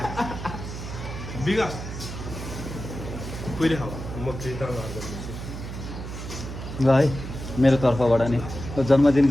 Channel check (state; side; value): noise; right; hum, 8 dB below the sound